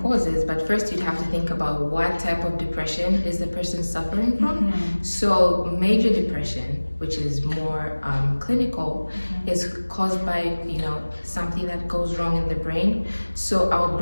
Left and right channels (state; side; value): inverted; both; correlation -1.00